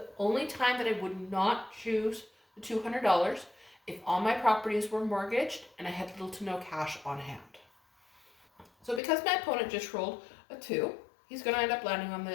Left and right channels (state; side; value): drops out; right; at 9.0 s